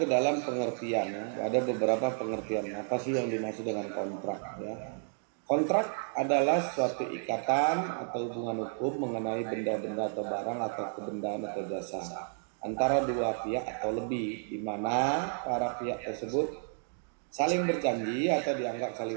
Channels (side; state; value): left; silent; 57 dB below the other